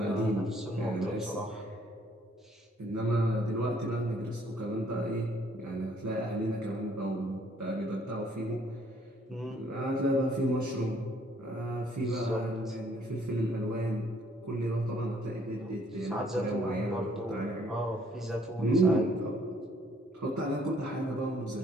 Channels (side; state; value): both; normal; correlation 0.64